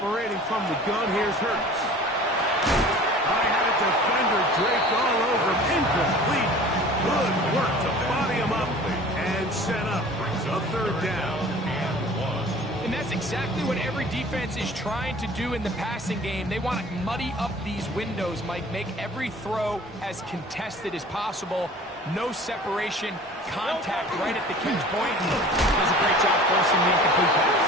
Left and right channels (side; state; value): both; normal; correlation 0.44